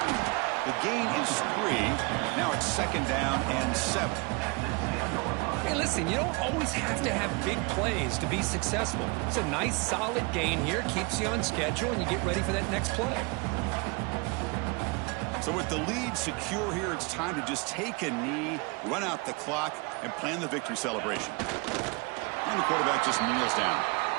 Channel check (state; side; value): quieter; left; 28.9 dB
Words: The gain is 3. Now it's 2nd down and 7. Hey, listen, you don't always have to have big plays to be successful. It's a nice, solid gain here, keeps you on schedule, and you get ready for that next play. So with the lead secure here, it's time to just take a knee, run out the clock, and plan the victory celebration. And the quarterback just kneels down.